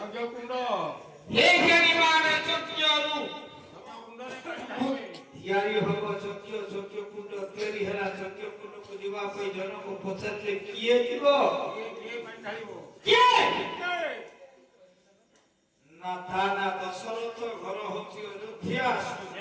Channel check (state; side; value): identical; both; correlation 1.00